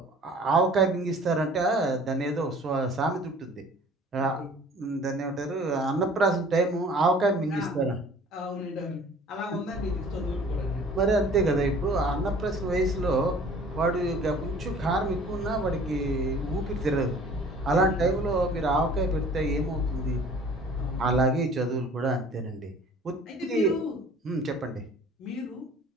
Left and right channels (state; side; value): normal; both; correlation 0.49